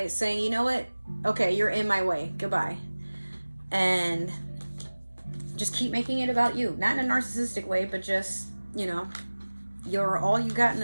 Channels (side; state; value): both; inverted; correlation -1.00